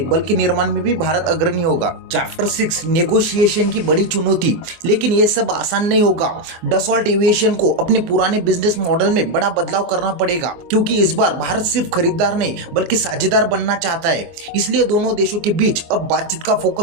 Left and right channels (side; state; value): left; late; 24 ms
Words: बल्कि निर्माण में भी भारत अग्रणी होगा। चैप्टर 6, नेगोशिएशन की बड़ी चुनौती। लेकिन यह सब आसान नहीं होगा। डसॉल्ट एविएशन को अपने पुराने बिजनेस मॉडल में बड़ा बदलाव करना पड़ेगा, क्योंकि इस बार भारत सिर्फ खरीदार नहीं बल्कि साझेदार बनना चाहता है। इसलिए दोनों देशों के बीच अब बातचीत का